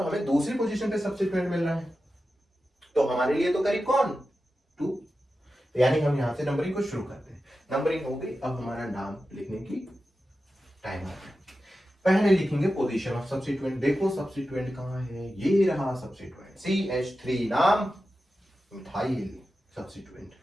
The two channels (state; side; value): normal; both; correlation 0.92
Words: हमें दूसरी पोजीशन पे सब्स्टिट्यूएंट मिल रहा है, तो हमारे लिए तो करीब कौन, 2। यानी हम यहां से नंबरिंग को शुरू करते हैं। नंबरिंग हो गई, अब हमारा नाम लिखने की टाइम आ गया। पहले लिखेंगे पोजीशन ऑफ सब्स्टिट्यूएंट। देखो सब्स्टिट्यूएंट कहां है, ये रहा सब्स्टिट्यूएंट, CH3, नाम मिथाइल सब्स्टिट्यूएंट।